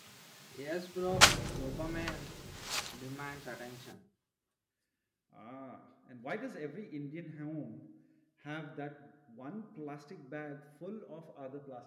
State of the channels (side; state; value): both; identical; correlation 1.00